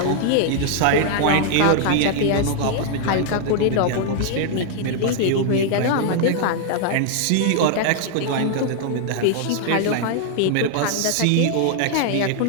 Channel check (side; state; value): both; different; correlation 0.00